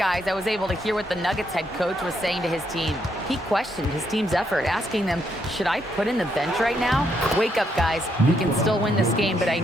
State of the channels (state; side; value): normal; both; correlation 0.76